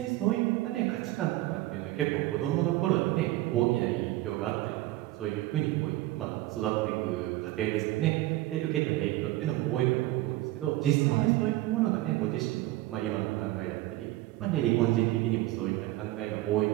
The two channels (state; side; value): quieter; left; 17.0 dB